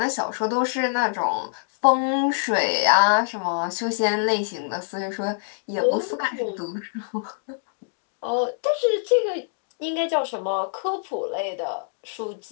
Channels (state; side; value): silent; right; digital silence